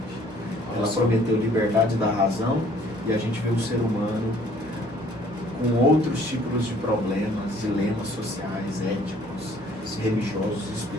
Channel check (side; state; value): both; normal; correlation 0.58